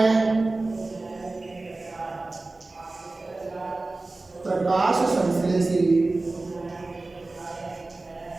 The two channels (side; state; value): left; quieter; 3.2 dB